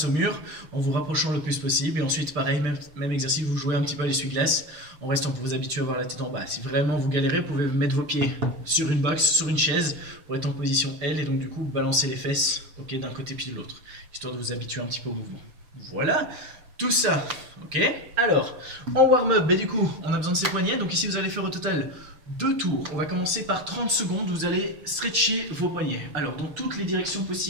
au mur, en vous rapprochant le plus possible. Et ensuite, pareil, même exercice, vous jouez un petit peu à l'essuie-glace, en restant pour vous habituer à avoir la tête en bas. Si vraiment vous galérez, vous pouvez mettre vos pieds sur une box, sur une chaise, pour être en position L, et donc du coup, balancer les fesses d'un côté puis de l'autre, histoire de vous habituer un petit peu au mouvement. Voilà, tout ça, ok. Alors, en warm-up, du coup, on a besoin de ses poignets. Donc ici, vous allez faire au total 2 tours. On va commencer par 30 secondes. Vous allez stretcher vos poignets. Alors, dans toutes les directions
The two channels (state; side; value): late; left; 6.8 ms